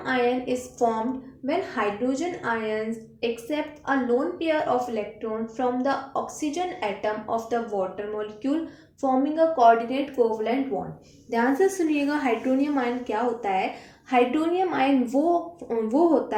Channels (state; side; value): identical; both; correlation 1.00